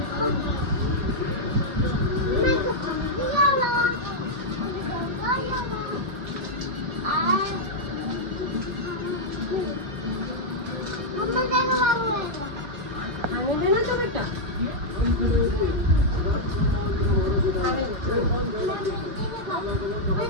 खाने देना तो बेटा।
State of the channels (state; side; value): late; left; 4.8 ms